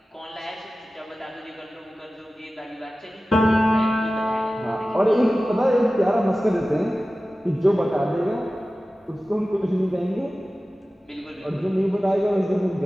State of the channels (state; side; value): normal; both; correlation 0.96